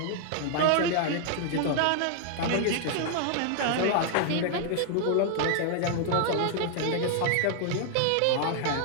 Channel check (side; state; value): both; different; correlation 0.00